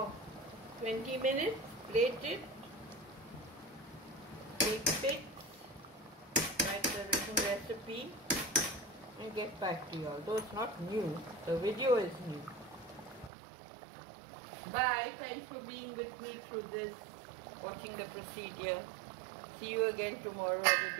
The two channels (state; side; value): drops out; left; at 13.3 s